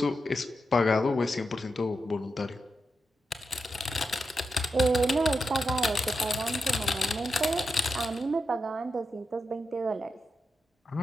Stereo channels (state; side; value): normal; both; correlation 0.87